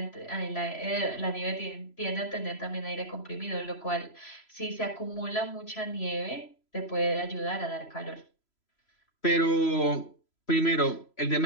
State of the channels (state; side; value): late; right; 3.0 ms